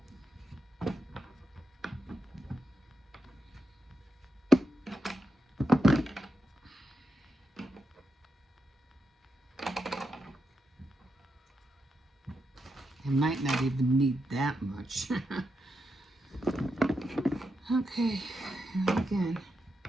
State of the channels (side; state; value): both; normal; correlation 0.85